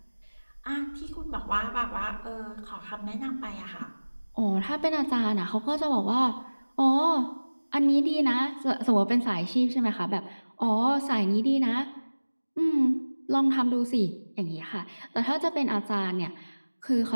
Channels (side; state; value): both; inverted; correlation -1.00